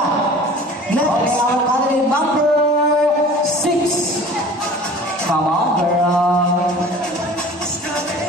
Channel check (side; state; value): both; normal; correlation 0.44